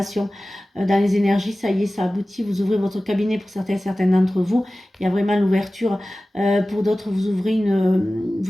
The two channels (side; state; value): both; normal; correlation 0.96